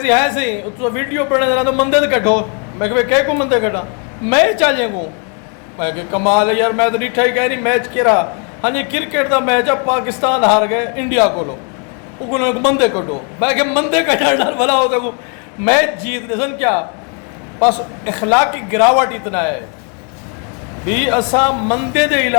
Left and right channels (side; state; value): right; quieter; 38.1 dB